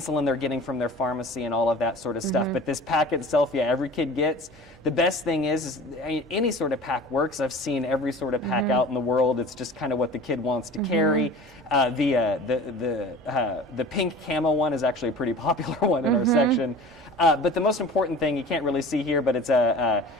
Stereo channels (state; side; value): normal; both; correlation 0.41